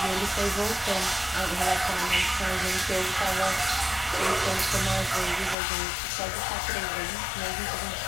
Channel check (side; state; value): right; drops out; at 5.6 s